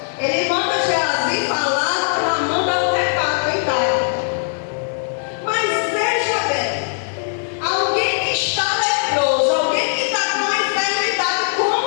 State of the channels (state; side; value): silent; right; 60 dB below the other